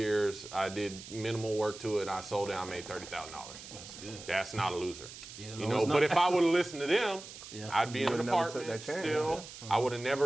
I did minimal work to it. I sold it. I made $30,000. That's good. That's not a loser. Yeah, You no, know, it's but not. if I would have listened to them, Yeah. I'd be in an would've never took apartment that chance, still. I would have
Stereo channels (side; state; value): right; noise; hiss, 14 dB below the sound